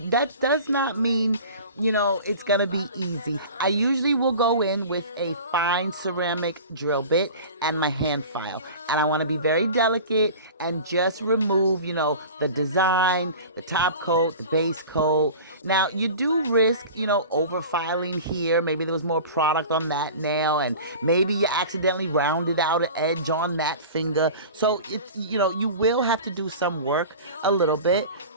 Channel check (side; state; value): both; inverted; correlation -0.37